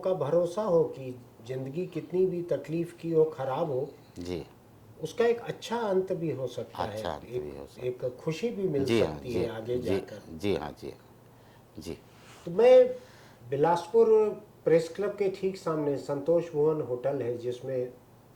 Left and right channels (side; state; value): both; identical; correlation 1.00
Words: भरोसा हो कि ज़िंदगी कितनी भी तकलीफ़ की हो, ख़राब हो जी, उसका एक अच्छा अंत भी हो सकता है, एक खुशी भी मिल सकती है आगे जाकर। जी हाँ, जी। तो मैं बिलासपुर प्रेस क्लब के ठीक सामने संतोष भुवन होटल है, जिसमें